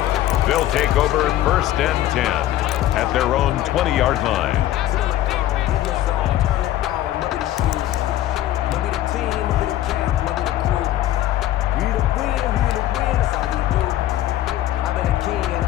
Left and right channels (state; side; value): quieter; right; 13.4 dB